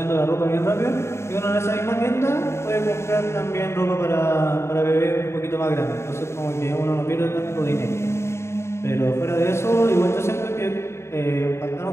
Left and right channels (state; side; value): late; right; 0.13 ms